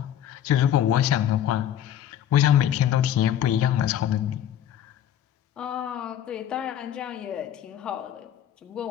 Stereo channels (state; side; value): quieter; right; 10.6 dB